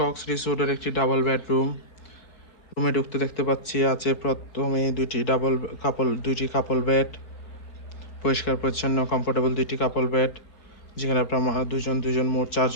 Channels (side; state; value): right; late; 4.7 ms